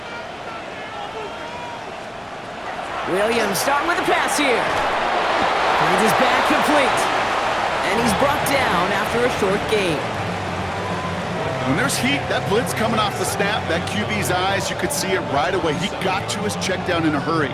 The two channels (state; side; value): identical; both; correlation 1.00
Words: Williams starting with a pass here. Finds his back complete. And he's brought down after a short gain. When there's heat, that blitz coming off the snap, that QB's eyes, you could see it right away. He got to his check down in a hurry.